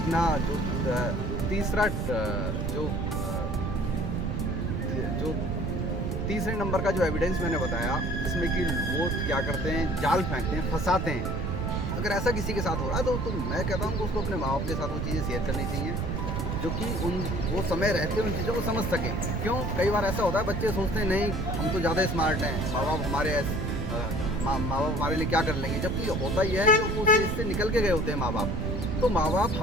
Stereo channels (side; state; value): right; noise; rumble, 1 dB below the sound